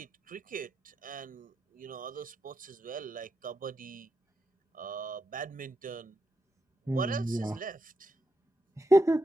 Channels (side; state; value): both; normal; correlation 0.85